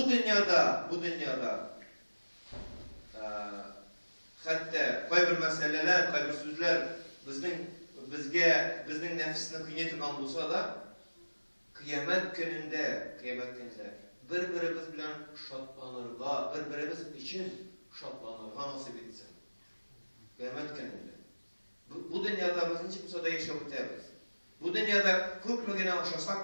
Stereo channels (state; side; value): inverted; both; correlation -1.00